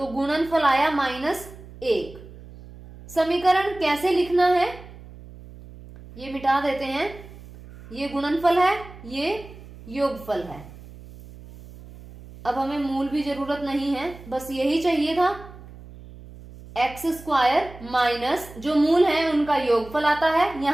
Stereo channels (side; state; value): right; noise; hum, 18 dB below the sound